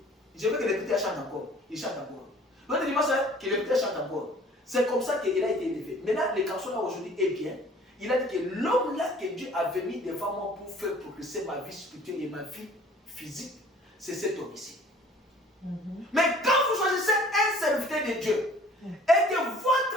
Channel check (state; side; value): normal; both; correlation 0.52